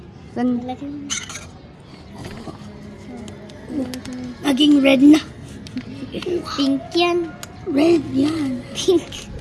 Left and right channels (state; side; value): identical; both; correlation 1.00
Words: San? Maging red na. Pink yan. Red yan. Pink.